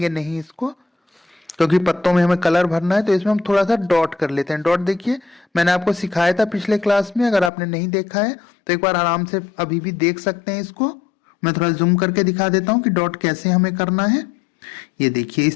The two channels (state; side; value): drops out; right; at 7.5 s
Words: नहीं इसको, क्योंकि पत्तों में हमें कलर भरना है, तो इसमें हम थोड़ा सा डॉट कर लेते हैं। डॉट देखिए मैंने आपको सिखाया था पिछले क्लास में, अगर आपने नहीं देखा है तो एक बार आराम से अभी भी देख सकते हैं इसको। मैं थोड़ा जूम करके दिखा देता हूँ कि डॉट कैसे हमें करना है। ये देखिए